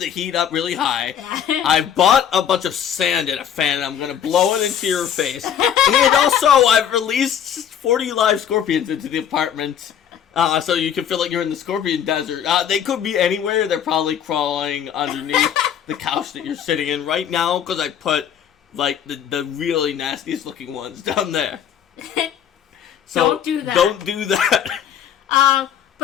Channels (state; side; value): quieter; right; 9.1 dB